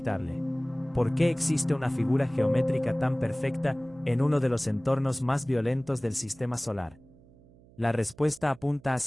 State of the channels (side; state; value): right; noise; hum, 26 dB below the sound